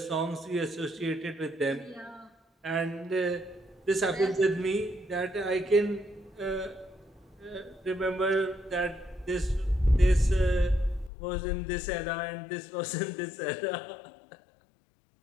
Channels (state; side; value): drops out; right; at 11.1 s